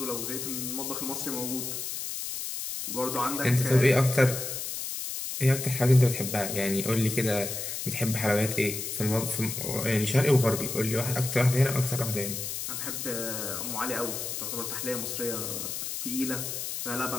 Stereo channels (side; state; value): left; noise; hiss, 5 dB below the sound